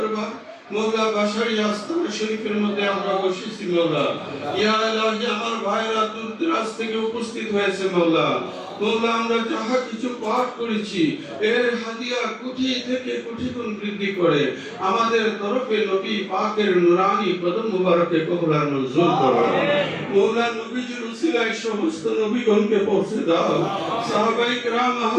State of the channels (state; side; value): identical; both; correlation 1.00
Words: মওলা বাশারি আস্তানা শরীফের মধ্যে আমরা বসেছি মওলা ইয়া ইলাহি আমার ভাইরা দূর দরাজ থেকে উপস্থিত হয়েছে মওলা মওলা আমরা যাহা কিছু পাঠ করেছি এর হাদিয়া কোটি থেকে কোটি গুণ বৃদ্ধি করে আমাদের তরফে নবী পাকের নূরানি কদম মুবারকে কবুল আর মঞ্জুর করো মওলা নবীজির উসিলায় সমস্ত নবীগণকে পৌঁছে দাও সাহাবায়ে কিরাম